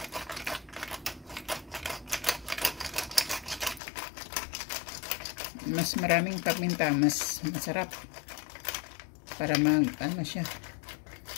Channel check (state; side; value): drops out; right; at 3.8 s